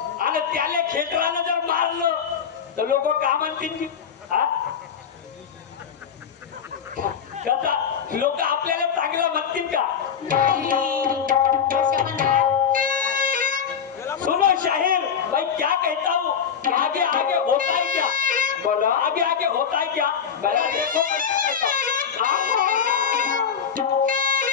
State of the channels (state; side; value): quieter; right; 7.4 dB